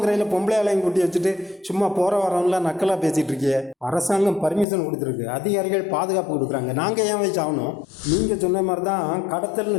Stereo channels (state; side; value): drops out; right; at 4.7 s